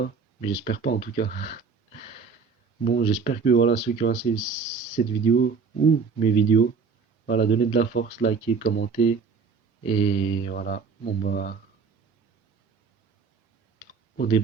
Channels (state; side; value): quieter; left; 5.3 dB